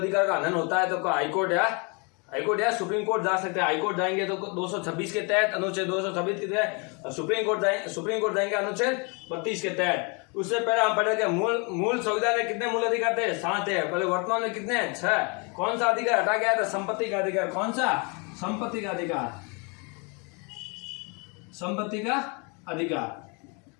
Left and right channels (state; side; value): quieter; right; 32.8 dB